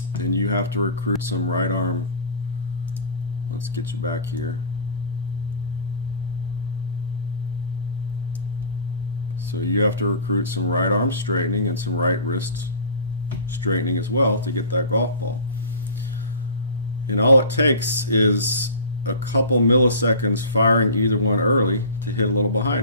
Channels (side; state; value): both; inverted; correlation -0.37